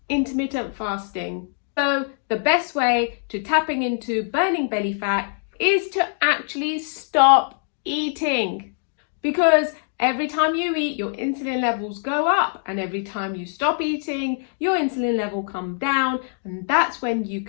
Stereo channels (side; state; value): right; silent; 63 dB below the other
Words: intermittent fasting? So the best way to tapping into burning belly fat is to actually stop eating, because every time you eat, your insulin levels go up, and every time you stop eating, your insulin level come down, and that's when you